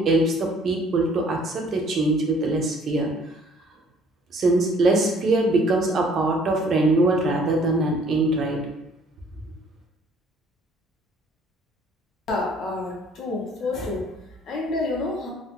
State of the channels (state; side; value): normal; both; correlation 0.58